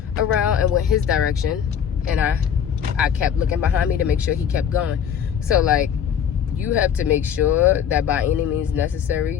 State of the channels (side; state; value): right; quieter; 8.4 dB